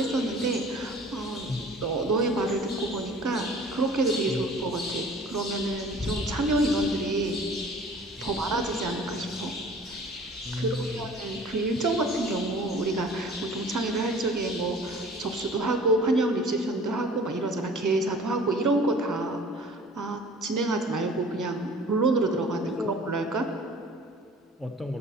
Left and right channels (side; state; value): both; normal; correlation 0.47